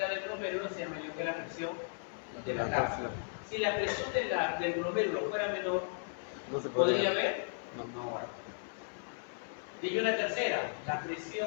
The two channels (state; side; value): silent; right; 54 dB below the other